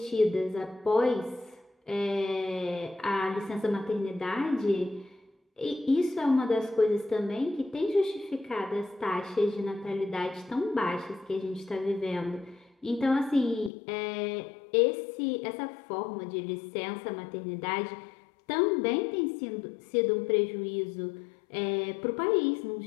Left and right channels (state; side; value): drops out; right; at 13.7 s